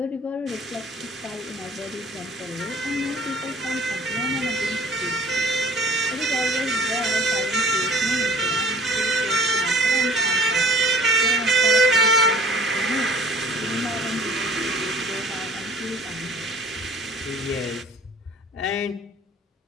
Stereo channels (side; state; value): both; normal; correlation 0.52